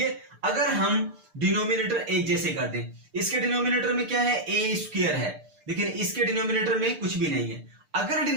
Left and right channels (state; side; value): late; left; 6.7 ms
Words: अगर हम डिनोमिनेटर एक जैसे कर दें। इसके डिनोमिनेटर में क्या है a स्क्वायर है, लेकिन इसके डिनोमिनेटर में कुछ भी नहीं है। अगर